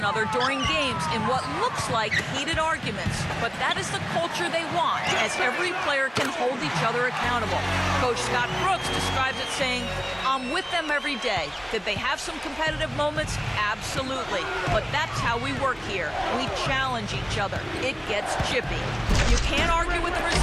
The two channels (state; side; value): identical; both; correlation 1.00